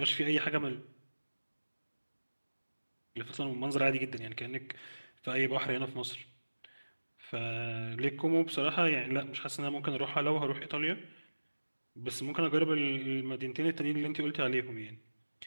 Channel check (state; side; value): inverted; both; correlation -1.00